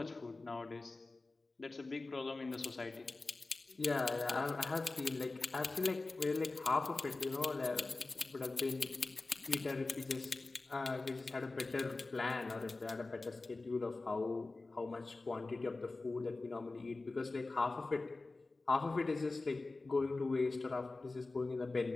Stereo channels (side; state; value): right; quieter; 3.4 dB